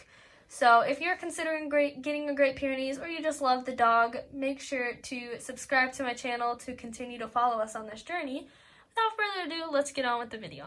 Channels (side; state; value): both; identical; correlation 1.00